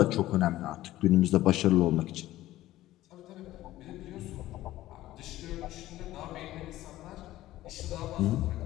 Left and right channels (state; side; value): quieter; right; 15.4 dB